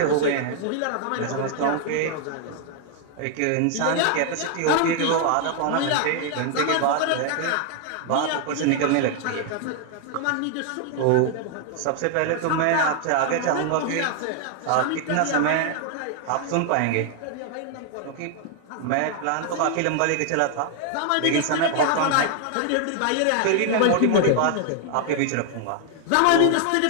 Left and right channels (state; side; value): different; both; correlation 0.00